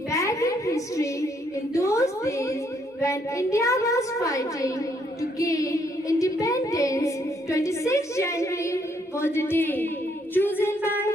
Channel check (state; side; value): normal; both; correlation 0.71